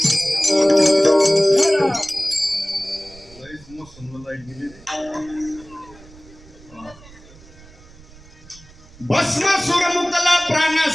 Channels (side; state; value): right; noise; rumble, 23 dB below the sound